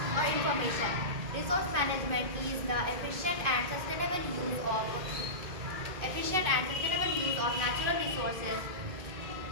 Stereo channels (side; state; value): left; late; 2.5 ms